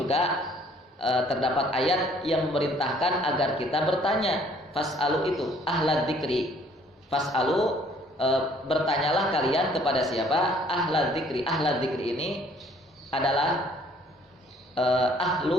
terdapat ayat yang memerintahkan agar kita bertanya. Fas'alu itu ahlad dzikri. Fas'alu, bertanyalah kalian kepada siapa? Ahlad dzikri. Ahlad dzikri ini adalah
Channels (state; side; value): normal; both; correlation 0.59